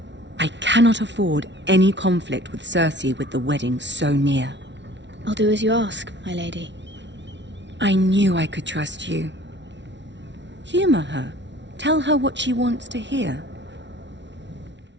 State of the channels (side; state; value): left; late; 0.52 ms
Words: I cannot afford any conflict with Cersei with the wedding so near. I'll do as you ask, my lady. I knew I could trust you. Humor her. Tell her what she wants to hear.